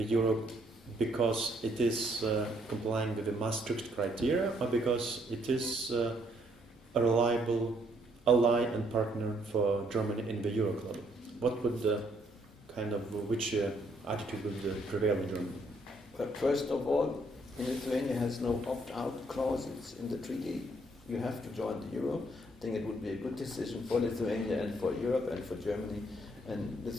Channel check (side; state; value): both; normal; correlation 0.69